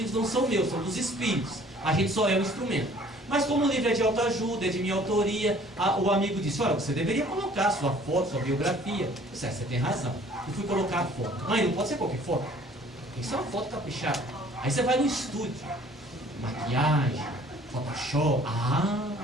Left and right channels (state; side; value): normal; both; correlation 0.54